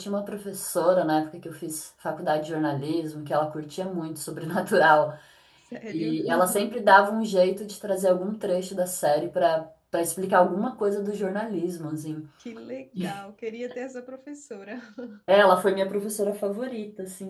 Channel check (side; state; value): both; identical; correlation 1.00